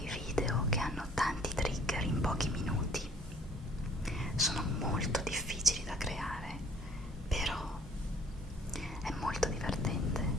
video che hanno tanti trigger in pochi minuti. Sono molto difficili da creare, però è molto divertente,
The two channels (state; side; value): normal; both; correlation 0.56